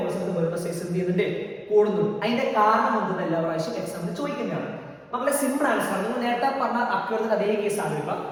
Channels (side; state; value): both; identical; correlation 1.00